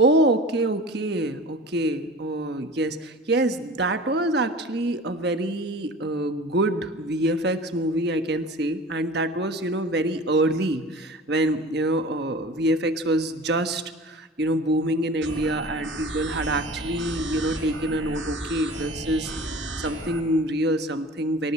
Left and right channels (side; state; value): both; normal; correlation 0.39